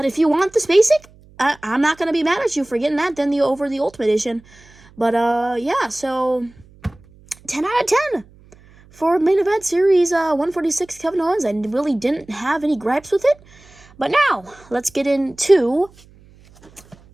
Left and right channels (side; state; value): right; noise; hum, 26 dB below the sound